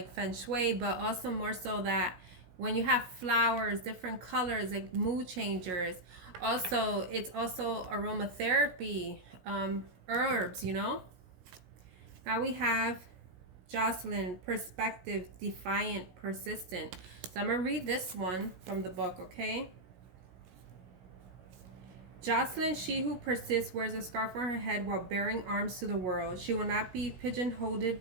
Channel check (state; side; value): late; left; 17 ms